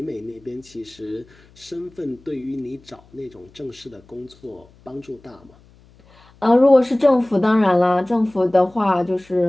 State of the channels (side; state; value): left; noise; hum, 28 dB below the sound